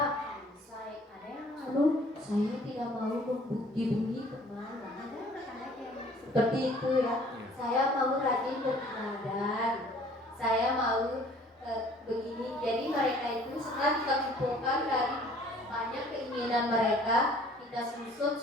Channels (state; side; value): normal; both; correlation 0.54